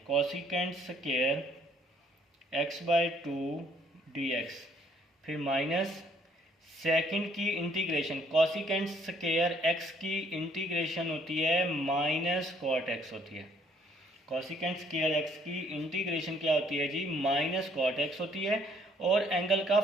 cosecant square x by 2 d x, फिर माइनस सेकंड की इंटीग्रेशन कॉसिकेंट स्क्वायर एक्स की इंटीग्रेशन होती है माइनस कॉट एक्स होती है। कॉसिकेंट स्क्वायर एक्स की इंटीग्रेशन क्या होती है जी, माइनस कॉट एक्स होती है, और एंगल का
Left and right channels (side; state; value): both; normal; correlation 0.64